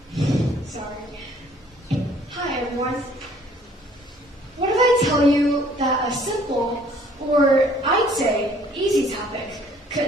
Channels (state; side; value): normal; both; correlation 0.58